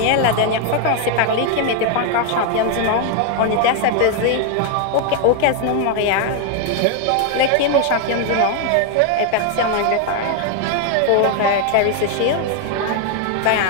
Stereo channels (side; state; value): both; different; correlation 0.00